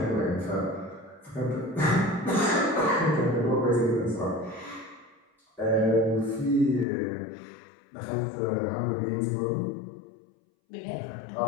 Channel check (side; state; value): right; drops out; at 6.9 s